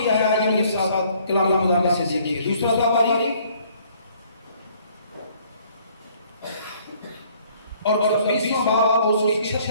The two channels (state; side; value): inverted; both; correlation -0.61